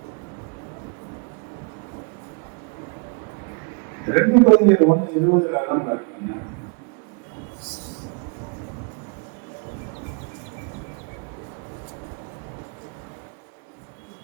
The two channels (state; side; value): quieter; left; 37.0 dB